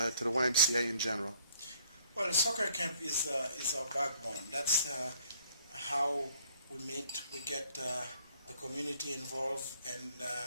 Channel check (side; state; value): both; inverted; correlation -0.62